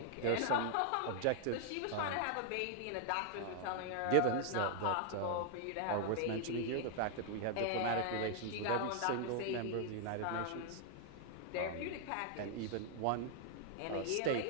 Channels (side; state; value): both; different; correlation 0.00